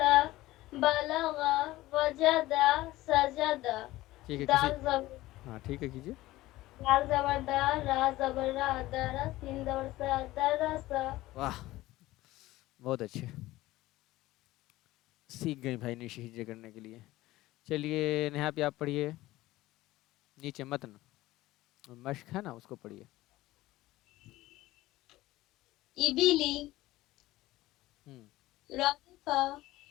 بلغا، وجدا، سجدا. ٹھیک ہے کسی. دال زبر، ہاں ٹھیک ہے کیجیے. دال زبر دا، را زبر را، درس، سین زبر سا، درسا. واہ بہت اچھے. سیکھ گئے بھائی نشی ہجے کرنے کے لیے. چلیے نیہا پہ آپ پڑھیے. نیچے متن مشق ہے نا اس کو پڑھیے. ابلی، ہم، رافع،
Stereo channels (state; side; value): quieter; right; 17.3 dB